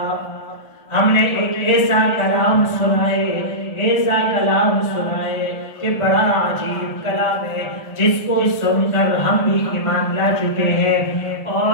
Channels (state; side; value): late; right; 1.3 ms